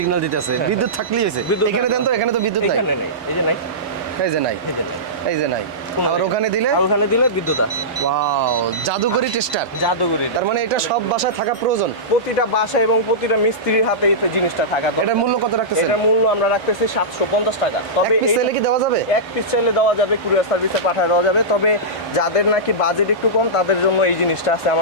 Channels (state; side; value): normal; both; correlation -0.16